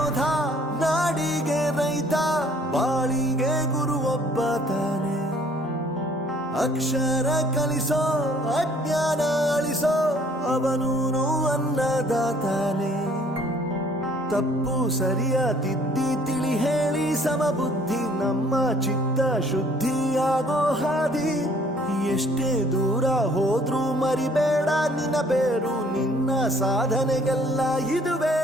ನಾಡಿಗೆ ರೈತ, ಬಾಳಿಗೆ ಗುರು ಒಬ್ಬ ತಾನೆ. ಅಕ್ಷರ ಕಲಿಸೋ, ಅಜ್ಞಾನ ಅಳಿಸೋ, ಅವನೂನು ಅನ್ನದಾತಾನೆ. ತಪ್ಪು ಸರಿಯ ತಿದ್ದಿ ತಿಳಿ ಹೇಳಿ ಸಮಬುದ್ಧಿ, ನಮ್ಮ ಚಿತ್ತ ಶುದ್ಧಿಯಾಗೋ ಹಾದಿ. ಎಷ್ಟೇ ದೂರ ಹೋದ್ರೂ ಮರಿಬೇಡ ನಿನ್ನ ಬೇರು, ನಿನ್ನ ಸಾಧನೆಗೆಲ್ಲ ಇದುವೇ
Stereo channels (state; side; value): normal; both; correlation 0.58